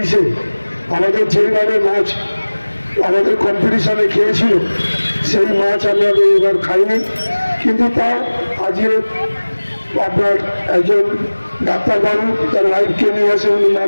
আমাদের যেভাবে মাছ আমাদের কম্পিটিশনে খেয়েছিল সেই মাছ আমরা এবার খাইনি। কিন্তু তাও আজকে আপনার একজন ডাক্তারবাবু তার লাইফকে নিয়ে আসে, উনি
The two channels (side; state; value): both; inverted; correlation -1.00